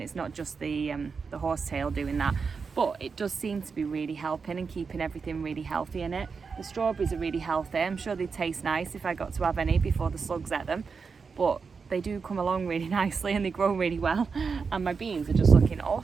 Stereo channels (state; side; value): quieter; left; 5.2 dB